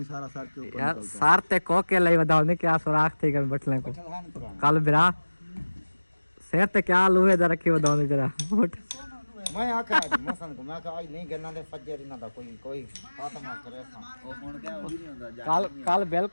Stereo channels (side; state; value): both; inverted; correlation -1.00